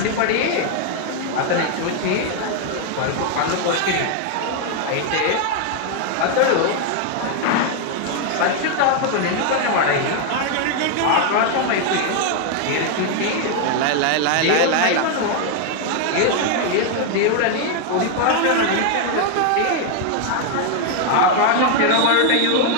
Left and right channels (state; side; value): different; both; correlation 0.00